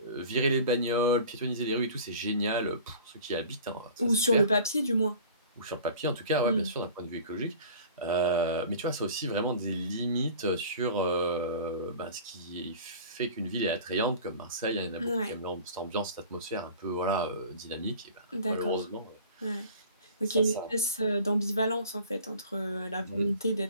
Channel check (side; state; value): both; inverted; correlation -0.43